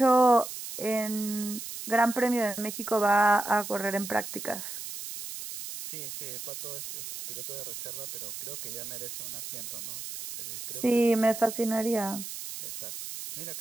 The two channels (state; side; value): noise; right; hiss, 8 dB below the sound